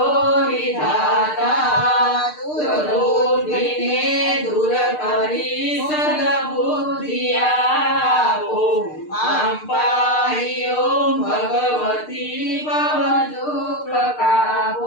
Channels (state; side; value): late; right; 6.6 ms